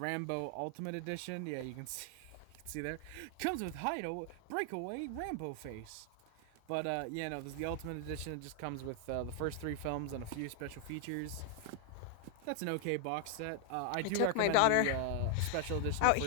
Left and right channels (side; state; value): both; different; correlation 0.00